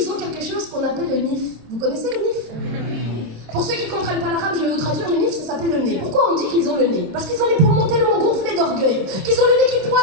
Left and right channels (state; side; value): late; left; 27 ms